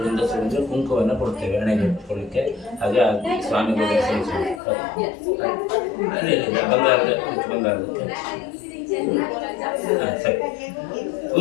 ಹೆಂಗಸರು ಕುಂಕುಮವನ್ನು ಕೊಡ್ತೇವೆ ಹಣೆಗೆ ಇಟ್ಕೊಳ್ಳಿಕ್ಕೆ. ಹಾಗೆ ಸ್ವಾಮಿಗಳು ಬಂಗಾರದ ಸರಿ.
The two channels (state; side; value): drops out; right; at 4.6 s